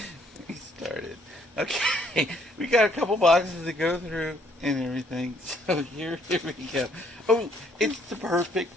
we started. Okay, we got a couple boxes to go through and everything. So here we go. Oh, it's the perfect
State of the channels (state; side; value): normal; both; correlation 0.66